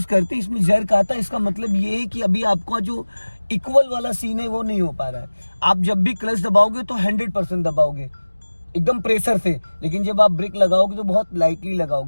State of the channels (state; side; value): inverted; both; correlation -1.00